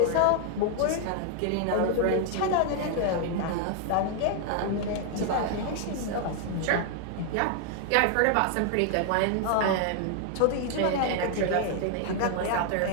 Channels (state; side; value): different; both; correlation 0.00